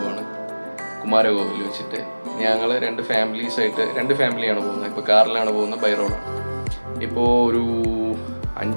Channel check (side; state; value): both; inverted; correlation -1.00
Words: കുമാരകോവിൽ വെച്ചിട്ട്. ഞങ്ങൾ രണ്ട് ഫാമിലിയാണ് പോകുന്നത്. ഇപ്പോൾ കാറിലാണ് പോകുന്നത്, ബൈ റോഡാണ്. ഇപ്പോൾ ഒരു